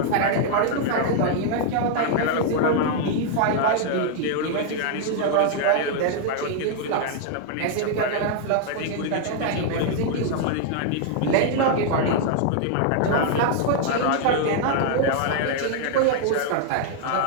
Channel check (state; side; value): different; both; correlation 0.00